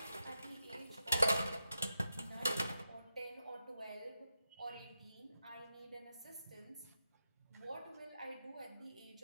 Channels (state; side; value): inverted; both; correlation -0.87